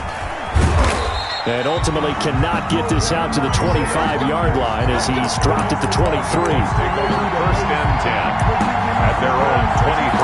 And ultimately cannot get this out to the 25-yard line as he's dropped at the 23. Take over 1st and 10 at their own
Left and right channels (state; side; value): identical; both; correlation 1.00